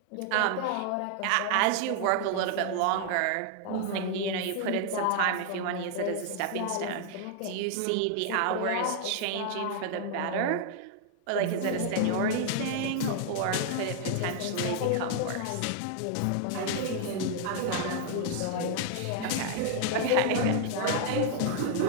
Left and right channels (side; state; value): both; different; correlation 0.00